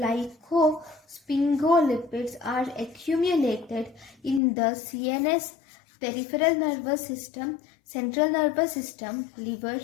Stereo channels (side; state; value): right; drops out; at 4.4 s